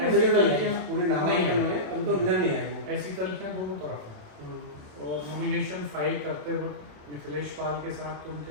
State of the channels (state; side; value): late; left; 27 ms